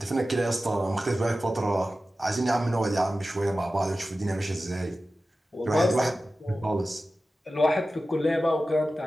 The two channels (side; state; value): both; normal; correlation 0.94